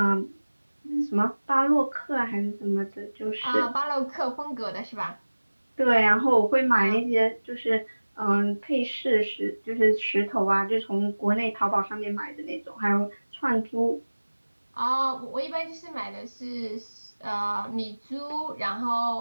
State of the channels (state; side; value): inverted; both; correlation -1.00